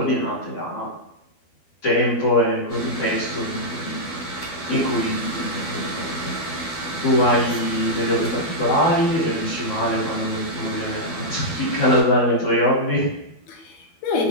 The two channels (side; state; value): right; late; 12 ms